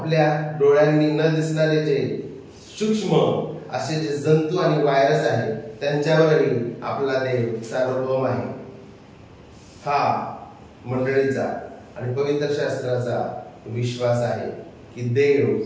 डोळ्यांनी न दिसणारे जे सूक्ष्म असे जे जंतू आणि व्हायरस आहेत त्यांच्यावरही आपला देव सार्वभौम आहे. हा मंडळीचा आणि पवित्र शास्त्राचा विश्वास आहे की देव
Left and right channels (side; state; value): both; identical; correlation 1.00